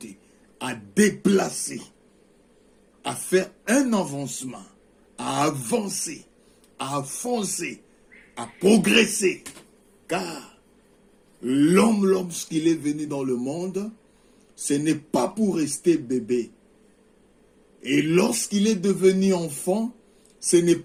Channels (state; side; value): identical; both; correlation 1.00